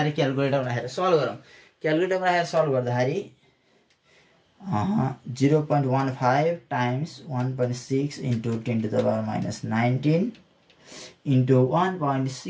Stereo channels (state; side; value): identical; both; correlation 1.00